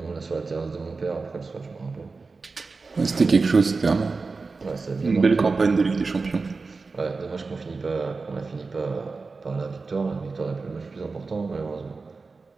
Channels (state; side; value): quieter; left; 4.1 dB